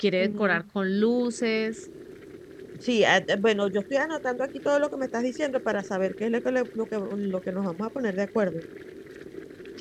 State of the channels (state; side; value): identical; both; correlation 1.00